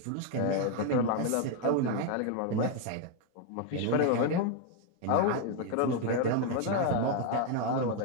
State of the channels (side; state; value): both; different; correlation 0.01